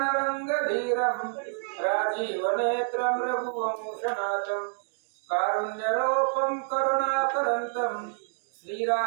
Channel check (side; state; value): left; silent; digital silence